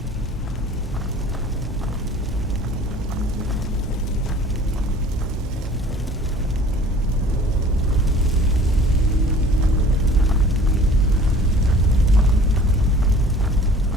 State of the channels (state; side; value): normal; both; correlation 0.48